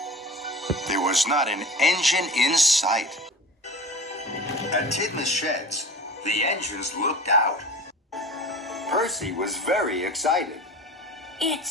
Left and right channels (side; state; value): both; normal; correlation 0.36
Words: There was not an engine in sight. At Tidmouth Sheds, the engines looked out. Percy was very excited. It